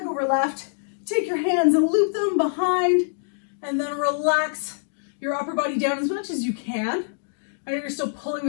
over left. Take your hands and loop them behind, and then relax your upper body down as much as you can. I know you're still pulling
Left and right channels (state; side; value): silent; right; digital silence